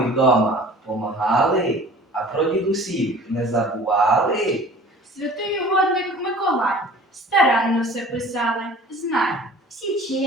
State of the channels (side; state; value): both; normal; correlation 0.45